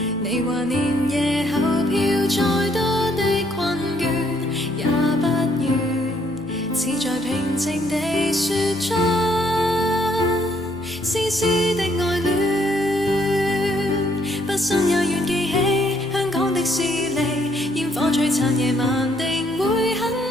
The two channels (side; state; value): left; noise; hum, 24 dB below the sound